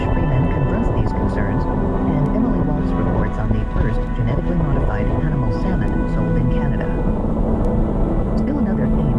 Freeman confronts these concerns, and Emily Waltz reports on the first genetically modified animal salmon sold in Canada. Still another aim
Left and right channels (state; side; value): identical; both; correlation 1.00